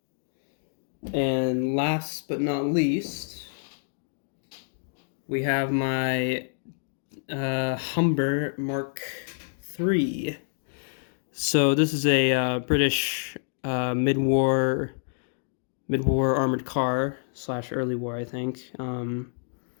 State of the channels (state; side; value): silent; right; digital silence